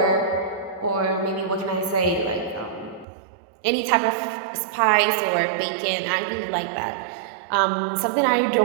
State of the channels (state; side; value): drops out; left; at 3.1 s